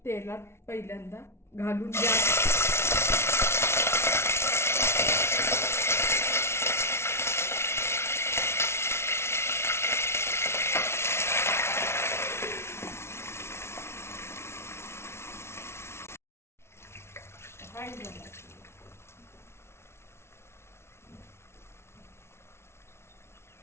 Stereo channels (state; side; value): late; right; 0.12 ms